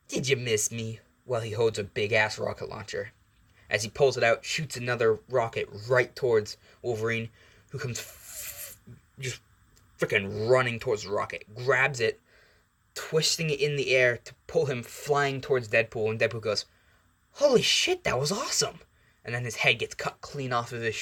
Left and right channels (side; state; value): both; identical; correlation 1.00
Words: did you miss me? While he holds a big-ass rocket launcher. As he pulls it out, shoots another rocket right towards Wolverine, who comes just freaking running towards the rocket, grabs it, twisting it in the air to pull him flying towards Deadpool, and Deadpool goes, Holy shit, that was awesome! And then his head gets cut clean off of his